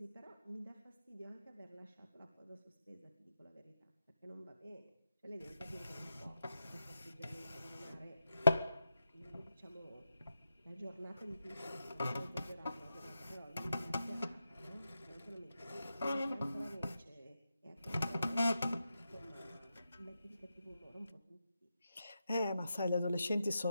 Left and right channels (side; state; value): both; inverted; correlation -0.87